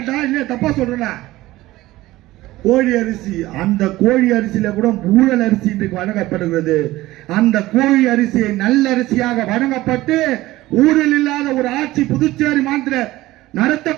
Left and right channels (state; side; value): quieter; left; 17.4 dB